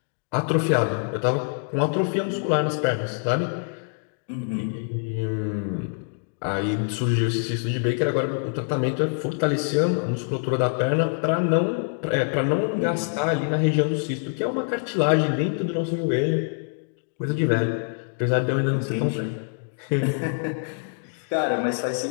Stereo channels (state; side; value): silent; right; 62 dB below the other